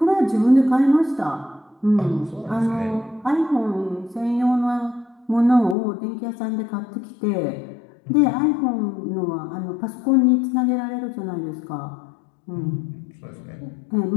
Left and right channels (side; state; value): right; drops out; at 5.8 s